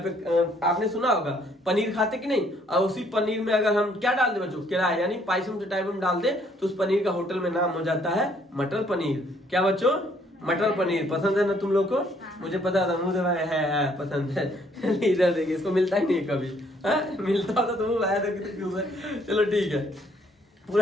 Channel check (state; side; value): normal; both; correlation 0.66